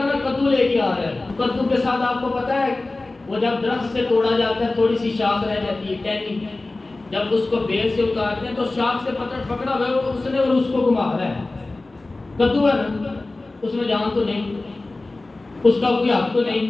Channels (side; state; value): right; quieter; 3.1 dB